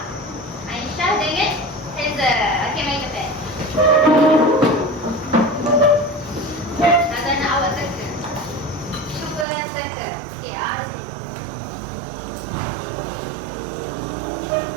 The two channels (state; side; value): drops out; left; at 9.5 s